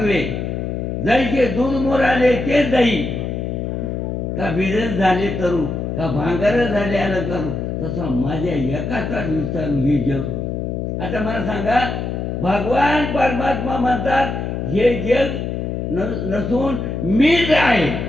जैसे दूध मोराले ते दही, का बिजन झाले तरू, का भांगर झाले आलं करू, तसं माझ्या एकाचा विस्तार हे जग. आता मला सांगा, भगवान परमात्मा म्हणतात हे जग नसून मीच आहे.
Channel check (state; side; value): noise; left; hum, 3 dB below the sound